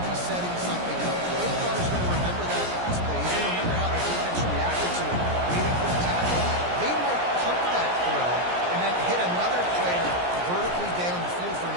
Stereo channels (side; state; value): left; late; 17 ms